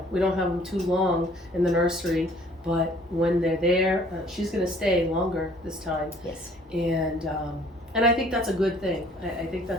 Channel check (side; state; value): both; normal; correlation 0.56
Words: don't have them too long in the nursery, but when they're there, she's going to stay longer this time. Yes. And I think that's a good thing. I think